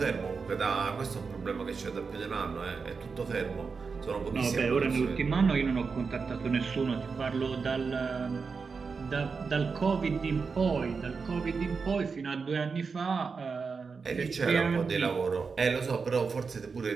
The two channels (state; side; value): quieter; left; 5.1 dB